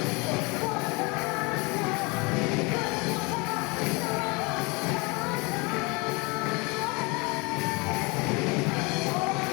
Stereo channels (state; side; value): quieter; right; 27.9 dB